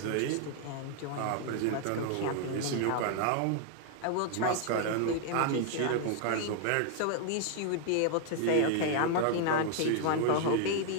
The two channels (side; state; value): both; different; correlation 0.00